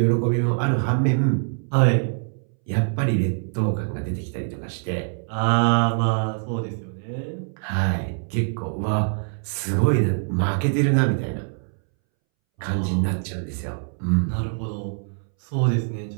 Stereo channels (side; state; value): left; silent; 63 dB below the other